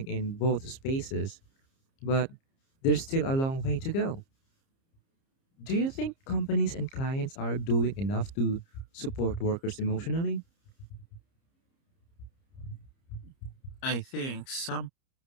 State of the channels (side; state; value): right; late; 30 ms